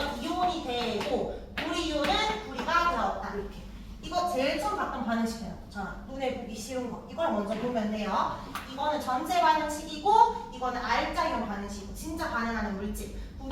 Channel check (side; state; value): both; identical; correlation 1.00